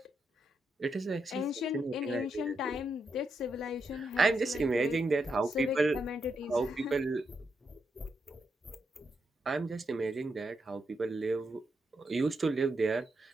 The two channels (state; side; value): normal; both; correlation 0.82